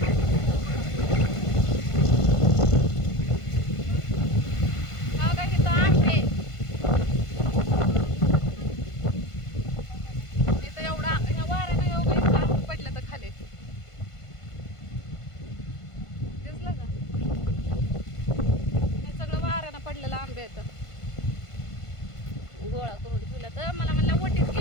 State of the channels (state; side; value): late; right; 1.5 ms